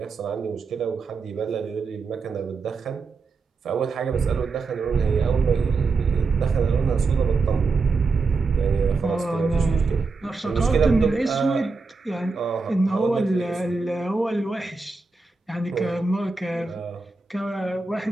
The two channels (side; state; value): left; quieter; 4.2 dB